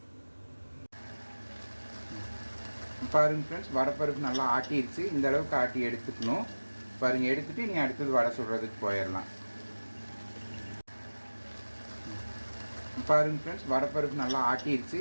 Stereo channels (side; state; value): both; inverted; correlation -1.00